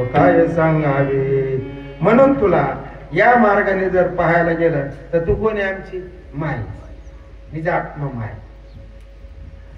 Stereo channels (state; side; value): identical; both; correlation 1.00